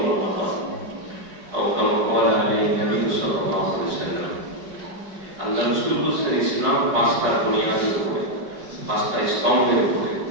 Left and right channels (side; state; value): left; late; 4.6 ms